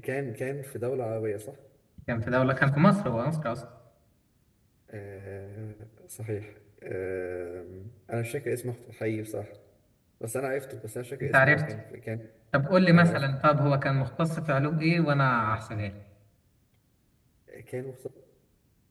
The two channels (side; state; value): both; identical; correlation 1.00